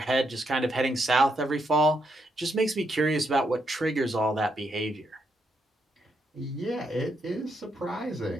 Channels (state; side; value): normal; both; correlation 0.79